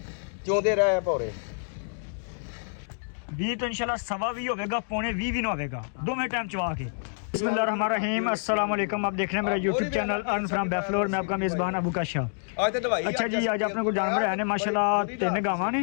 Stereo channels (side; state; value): right; silent; digital silence